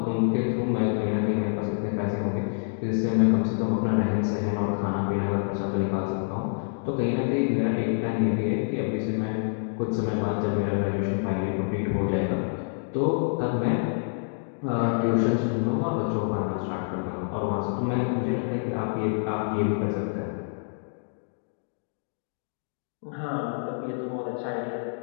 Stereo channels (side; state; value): right; silent; digital silence